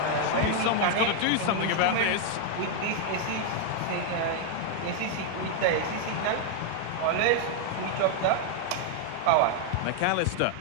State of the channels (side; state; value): both; different; correlation 0.00